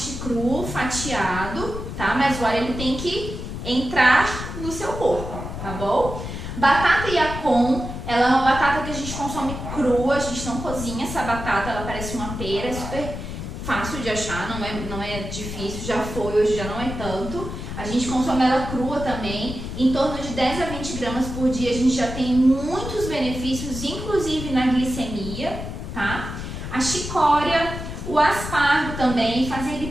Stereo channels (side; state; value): left; noise; rumble, 7 dB below the sound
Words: cru, fatiado, tá? Mas o alho ele tem que entrar no seu corpo, tá bom? Batata yacon, ela é uma batata que a gente consome crua, a gente não cozinha essa batata, ela parece uma pera, é super fácil de achar, não é difícil, já foi, hoje já não é tanto. A gente consome ela crua também, em torno de 10 a 20 gramas por dia, a gente já tem muitos benefícios, inclusive na glicemia, tá? A chicória, o aspargo também, fazer